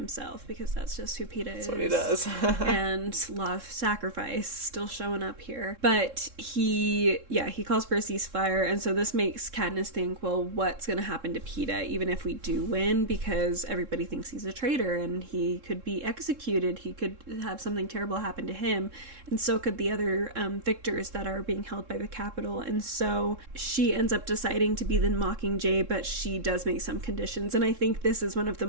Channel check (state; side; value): late; left; 3.7 ms